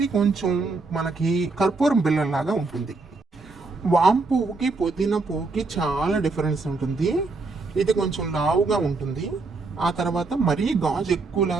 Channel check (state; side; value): quieter; left; 3.8 dB